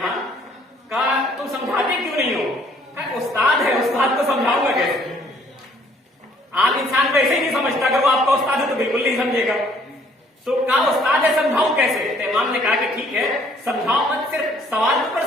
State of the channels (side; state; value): both; normal; correlation 0.62